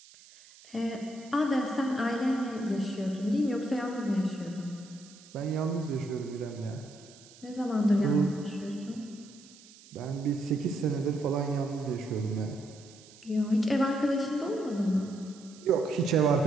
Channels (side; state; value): right; noise; hiss, 22 dB below the sound